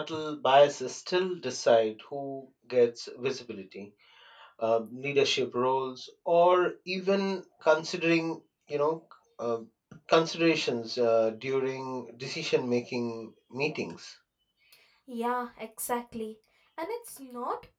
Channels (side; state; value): both; identical; correlation 1.00